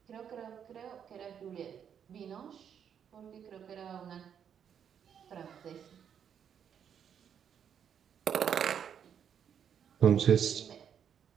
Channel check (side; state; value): left; quieter; 8.3 dB